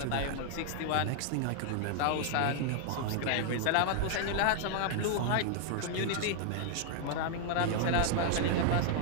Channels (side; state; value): both; different; correlation 0.00